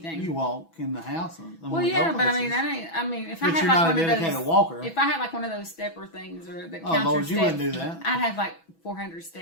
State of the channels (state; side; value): late; right; 6.1 ms